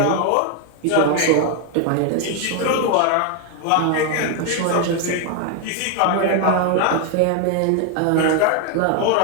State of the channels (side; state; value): both; different; correlation 0.01